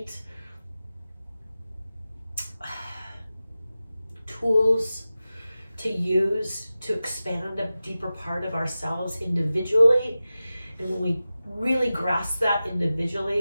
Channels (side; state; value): both; inverted; correlation -0.95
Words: tools to use to expand a deeper part of ourselves individually. And when we really grasp that